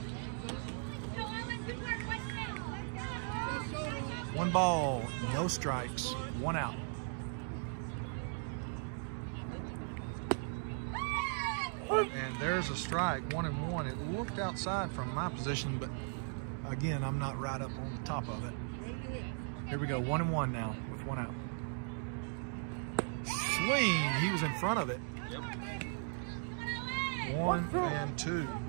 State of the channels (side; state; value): left; silent; 53 dB below the other